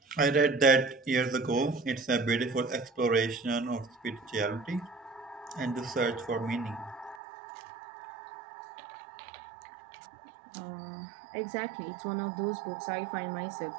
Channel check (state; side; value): drops out; left; at 7.2 s